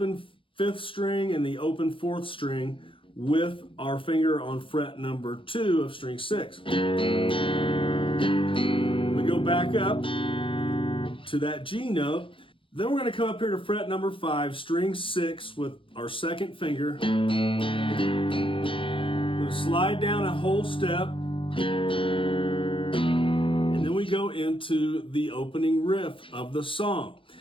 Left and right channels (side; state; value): right; late; 0.25 ms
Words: 5th string and the open 4th string with our finger on fret number 2 of string 6. We go back up to that G note. Then we're going to come up here to fret number 5, string 6 with our 2nd finger. We're going to slide down a whole step. We go into the opening riff of the song.